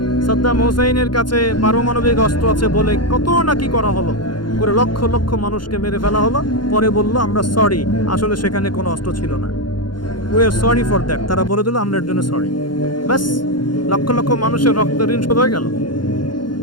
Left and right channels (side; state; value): right; late; 0.71 ms